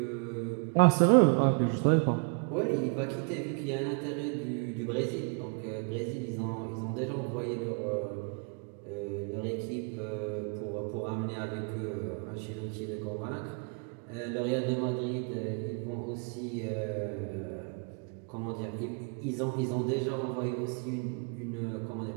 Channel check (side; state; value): left; quieter; 37.9 dB